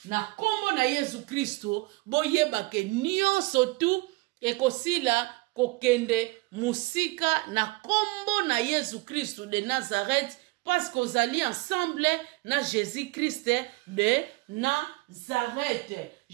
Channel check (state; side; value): quieter; left; 23.6 dB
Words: na kombo na Yesu Kristo boyeba ke nyonso tu ekosila kokende musika na kombo na Yesu Kristo de Nazareth parce qu'ozali ensemble na Jésus Christ de Nazareth.